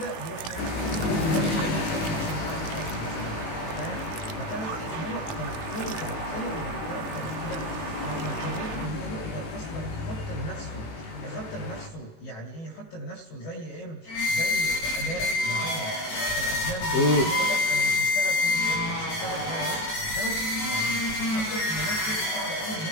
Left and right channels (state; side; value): late; right; 19 ms